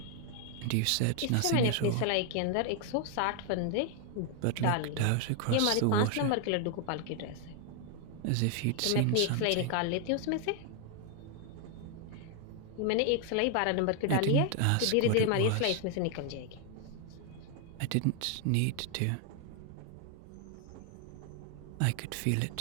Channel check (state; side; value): different; both; correlation 0.00